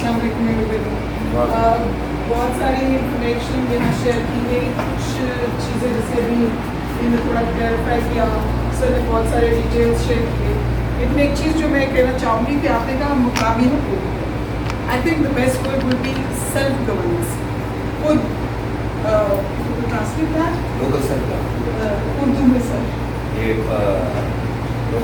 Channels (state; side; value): identical; both; correlation 1.00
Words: السلام علیکم. بہت ساری انفارمیشن یہاں شیئر کی گئی, کچھ چیزیں جیسے ابھی میں نے تھوڑا کلیئرفائی کیا, سر نے بہت سارے ڈیٹیلس شیئر کیے. لیکن ایک چیز جو میں کہنا چاہوں گی کہ آپ نے کہا مقامی حکومت, I think the best word will be self governance. خود ٹرانسلیٹ لوکل سیلف اردو میں سر